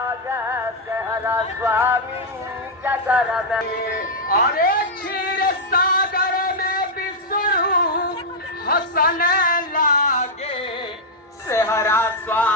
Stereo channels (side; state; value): both; normal; correlation -0.04